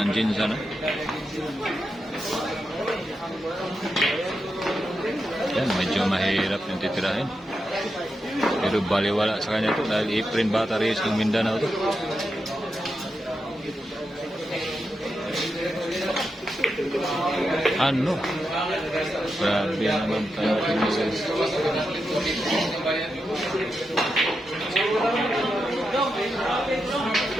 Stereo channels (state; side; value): normal; both; correlation 0.87